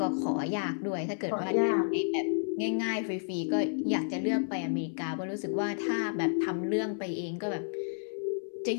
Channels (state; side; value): silent; right; 57 dB below the other